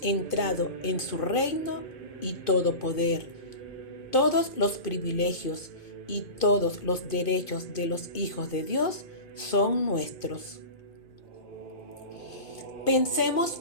entrado en su reino y todo poder, todos los privilegios y todos los derechos de los hijos de Dios son nuestros. Pensemos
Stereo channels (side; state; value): right; late; 2.5 ms